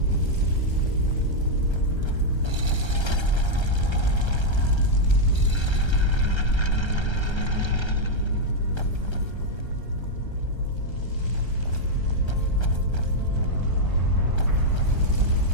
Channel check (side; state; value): right; late; 1.3 ms